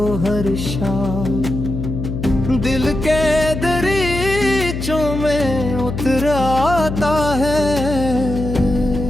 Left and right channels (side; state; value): left; noise; hum, 5 dB below the sound